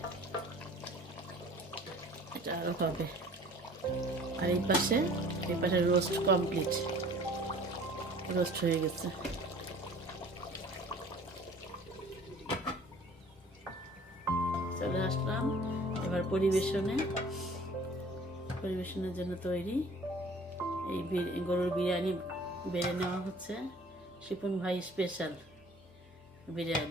এটা আরো হবে। আর এই পাশে রোস্ট কমপ্লিট, রোস্ট হয়ে গেছে। চলে আসলাম এবার পরিবেশনের জন্য তৈরি। এই গরুর বিরিয়ানি বেড়ে নেওয়া হচ্ছে, শিপন ভাই স্পেশাল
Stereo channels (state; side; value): normal; both; correlation 0.49